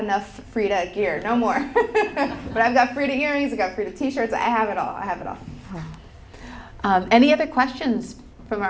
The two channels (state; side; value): identical; both; correlation 1.00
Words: Frida gear, no more. But I've got Frida earrings, I've got Frida t-shirts, I have it all. Any other questions from